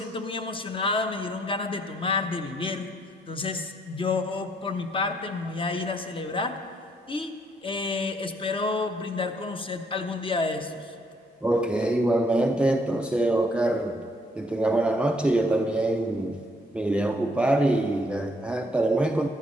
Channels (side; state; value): both; normal; correlation 0.69